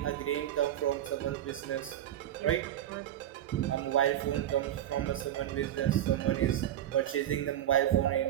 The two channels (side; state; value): left; quieter; 11.6 dB